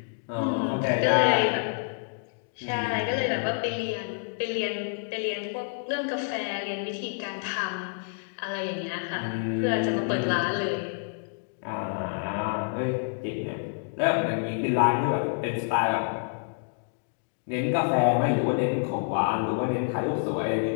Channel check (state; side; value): silent; right; digital silence